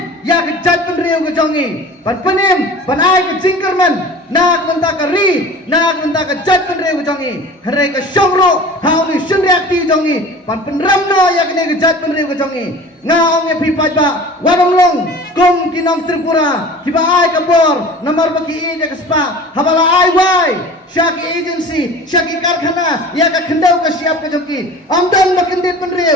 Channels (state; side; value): normal; both; correlation 0.40